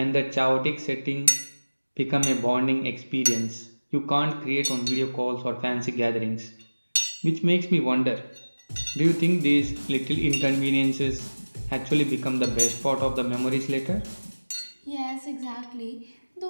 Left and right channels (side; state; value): both; inverted; correlation -1.00